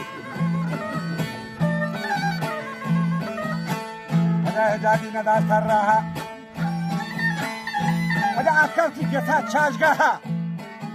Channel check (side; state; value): both; identical; correlation 1.00